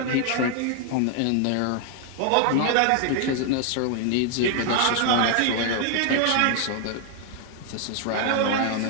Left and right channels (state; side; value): different; both; correlation 0.00